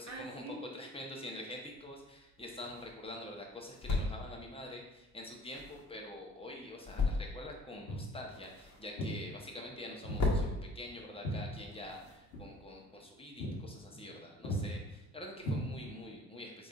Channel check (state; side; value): normal; both; correlation 0.51